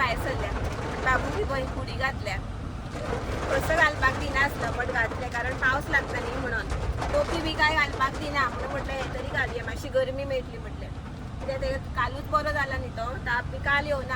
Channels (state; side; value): identical; both; correlation 1.00